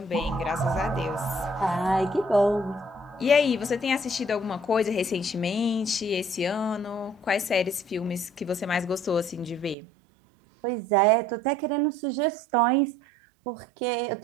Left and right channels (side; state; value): left; drops out; at 9.8 s